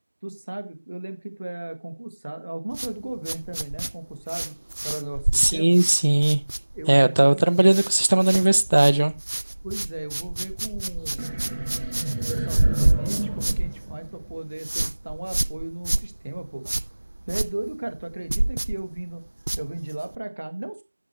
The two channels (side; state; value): both; inverted; correlation -1.00